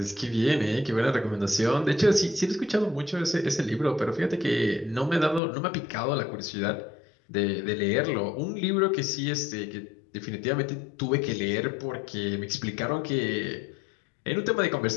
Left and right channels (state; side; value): drops out; right; at 5.4 s